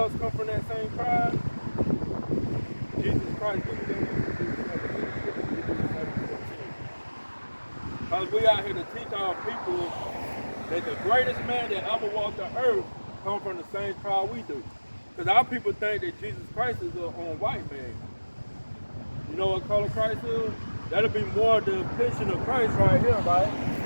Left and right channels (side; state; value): both; inverted; correlation -1.00